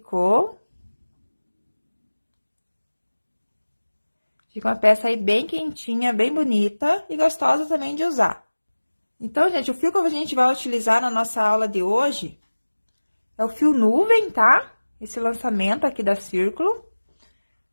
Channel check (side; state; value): both; inverted; correlation -1.00